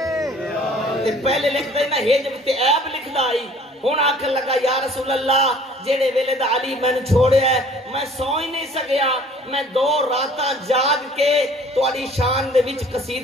پہلے لکھ دینا ہے جب تے عیب لکھ دائی، ہون آکھن لگا یا رسول اللہ جیڑے ویلے دا علی میں نے چھوڑے ہے میں سو ہی نہیں سکیا، میں 2 راتاں جاگ کے تواڈی شان دے وچ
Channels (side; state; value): both; normal; correlation 0.52